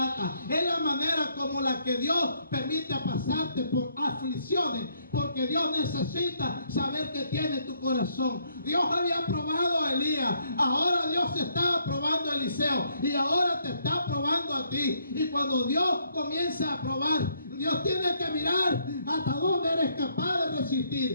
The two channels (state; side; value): inverted; both; correlation -0.70